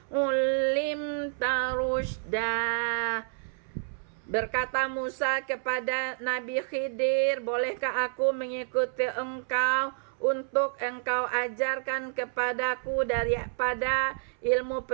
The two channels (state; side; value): silent; left; 58 dB below the other